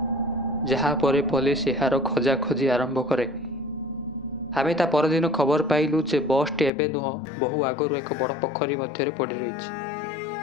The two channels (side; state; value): right; drops out; at 6.7 s